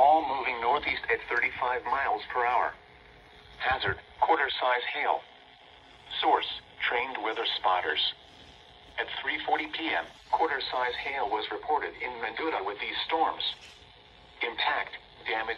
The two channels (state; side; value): identical; both; correlation 1.00